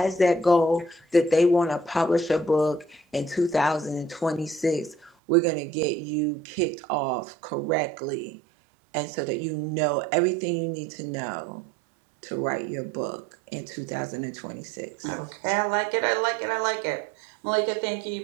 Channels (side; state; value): left; drops out; at 5.1 s